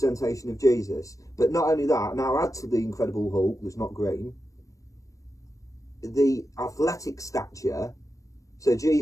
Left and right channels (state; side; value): late; right; 0.16 ms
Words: of Jesus. But not only that, now add to the Incredible Hulk, that's not green, the athletic stature. So